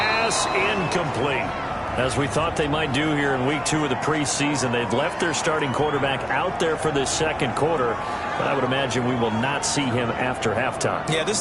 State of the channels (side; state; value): both; identical; correlation 1.00